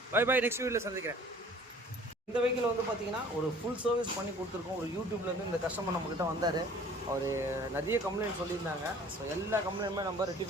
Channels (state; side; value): normal; both; correlation 0.51